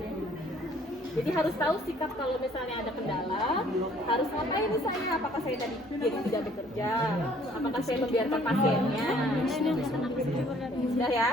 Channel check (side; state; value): both; normal; correlation 0.59